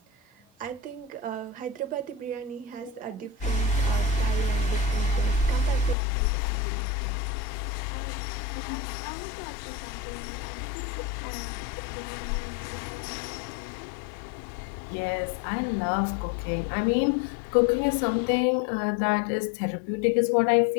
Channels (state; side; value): drops out; right; at 6.0 s